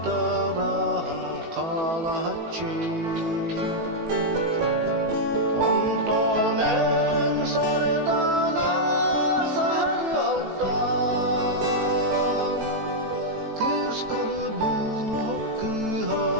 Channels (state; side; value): late; left; 18 ms